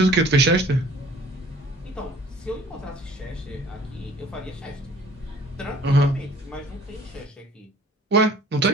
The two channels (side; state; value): both; normal; correlation 0.52